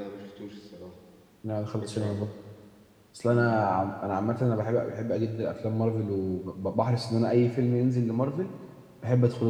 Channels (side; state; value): both; identical; correlation 1.00